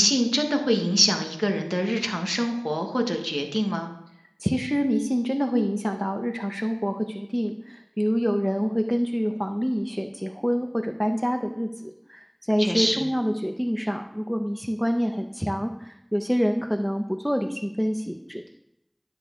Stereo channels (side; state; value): both; identical; correlation 1.00